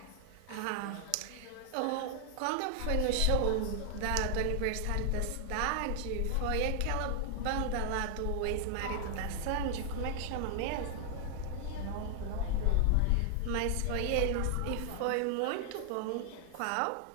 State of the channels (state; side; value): different; both; correlation 0.00